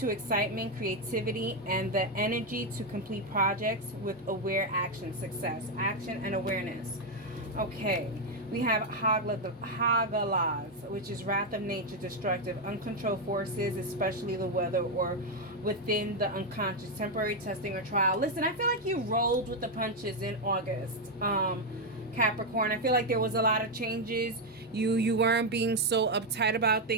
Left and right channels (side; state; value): both; normal; correlation 0.03